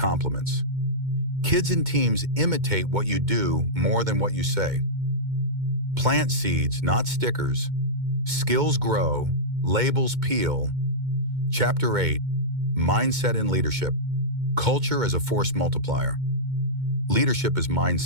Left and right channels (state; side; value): late; left; 2.2 ms